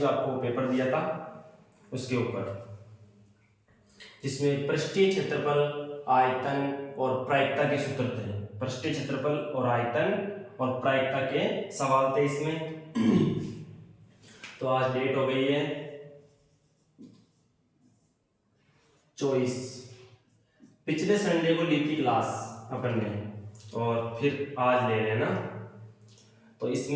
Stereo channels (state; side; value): identical; both; correlation 1.00